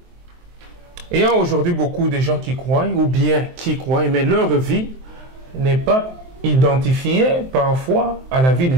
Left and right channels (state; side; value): late; left; 23 ms